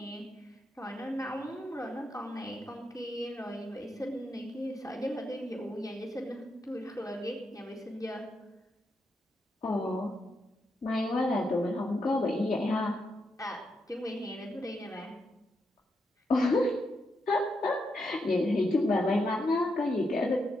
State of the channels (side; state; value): both; normal; correlation 0.82